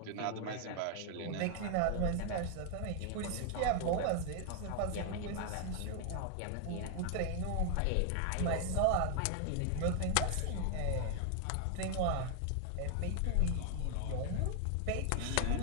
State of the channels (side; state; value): both; different; correlation 0.00